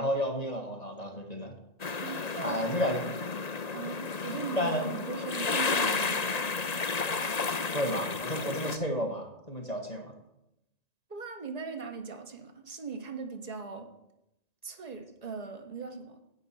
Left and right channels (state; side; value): late; right; 1.9 ms